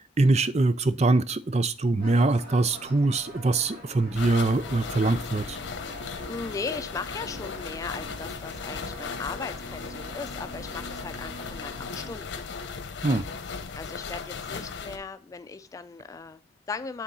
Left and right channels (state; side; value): normal; both; correlation 0.70